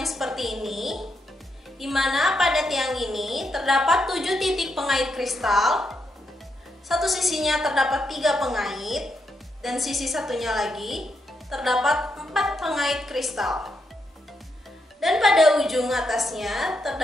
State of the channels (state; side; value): normal; both; correlation 0.81